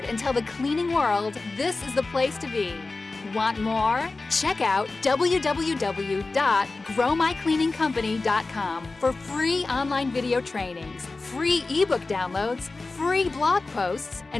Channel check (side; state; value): right; quieter; 3.5 dB